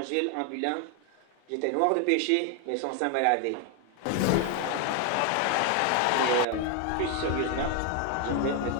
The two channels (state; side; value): different; both; correlation 0.01